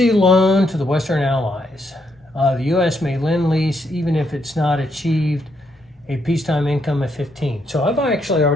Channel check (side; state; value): both; normal; correlation 0.77